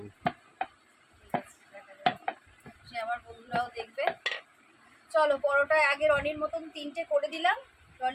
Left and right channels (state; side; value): identical; both; correlation 1.00